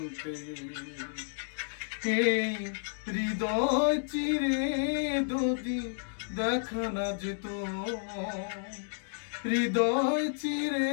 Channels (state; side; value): silent; right; digital silence